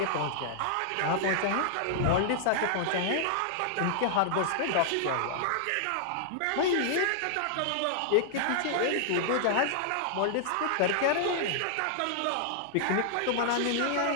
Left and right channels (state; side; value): different; both; correlation -0.01